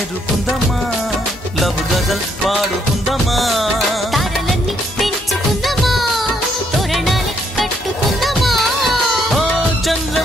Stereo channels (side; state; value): both; normal; correlation 0.72